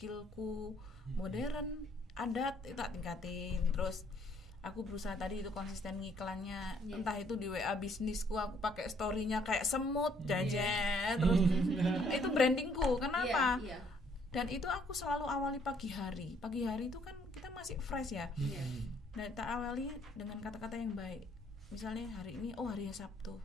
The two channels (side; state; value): both; normal; correlation 0.66